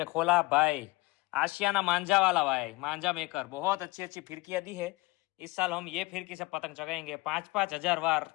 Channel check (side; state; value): right; quieter; 23.0 dB